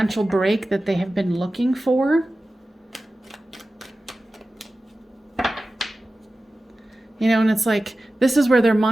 break that they have been looking for. You know, and it's like, this is where their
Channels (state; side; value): normal; both; correlation 0.95